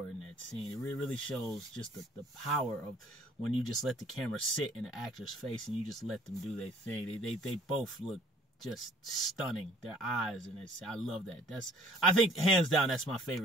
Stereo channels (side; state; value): both; normal; correlation 0.55